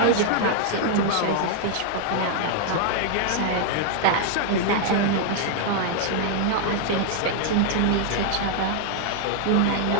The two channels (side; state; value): both; different; correlation 0.00